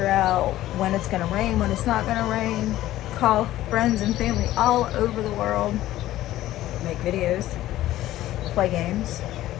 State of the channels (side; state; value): right; quieter; 14.6 dB